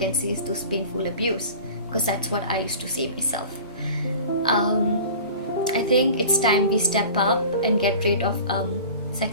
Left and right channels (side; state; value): both; inverted; correlation -0.41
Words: see is those painful abuse, because that's what I used to say myself. I think it's time we step up and get rid of